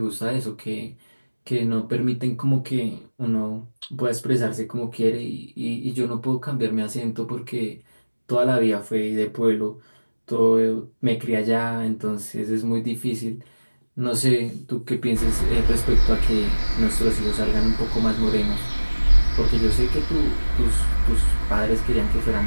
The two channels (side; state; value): both; inverted; correlation -1.00